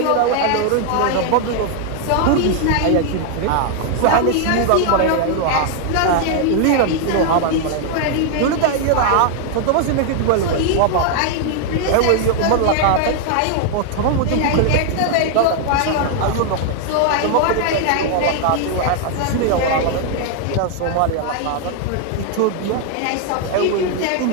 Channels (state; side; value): different; both; correlation 0.00